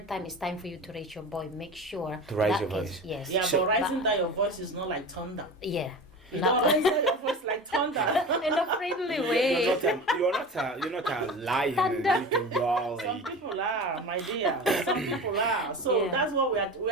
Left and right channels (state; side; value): normal; both; correlation 0.31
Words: time it's time for you to raise your voice. Make sure to raise your voice. Yes. Yeah, but raising down your voice is not like thunder. Yeah. You don't raise down your voice like thunder. In a friendly way. You're not a lion. You can growl. Some people are, my dear. Some people are. So that's what we